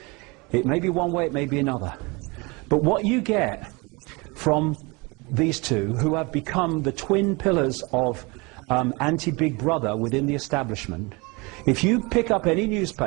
It may be one way, it may be another. But what you get from these two, who have become the twin pillars of anti-Big Brother within the establishment, if you pick up any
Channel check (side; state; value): left; quieter; 26.9 dB